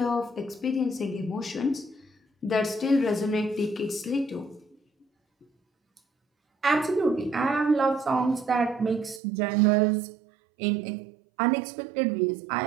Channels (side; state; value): left; drops out; at 9.2 s